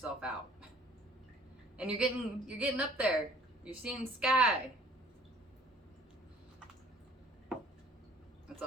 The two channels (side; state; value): both; normal; correlation 0.54